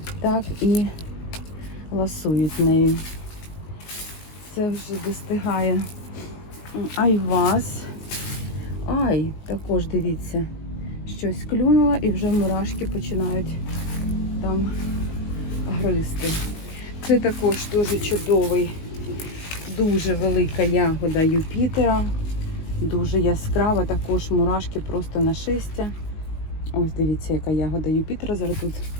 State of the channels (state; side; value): late; right; 19 ms